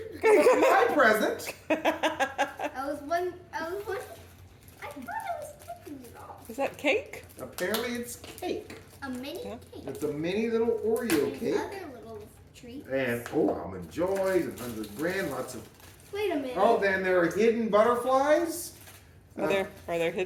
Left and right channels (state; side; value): identical; both; correlation 1.00